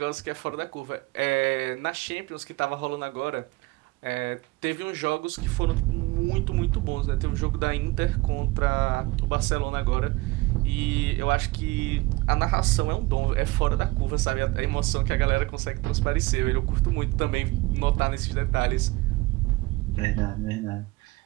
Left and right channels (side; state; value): left; quieter; 21.8 dB